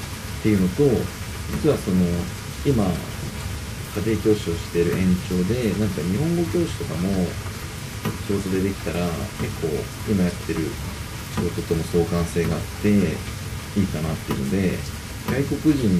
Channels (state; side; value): identical; both; correlation 1.00